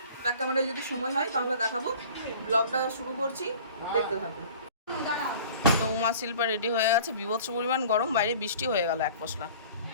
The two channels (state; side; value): inverted; both; correlation -0.45